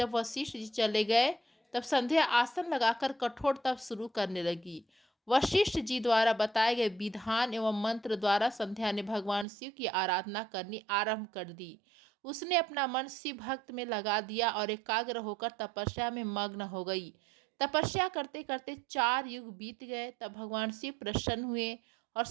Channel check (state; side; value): drops out; left; at 9.5 s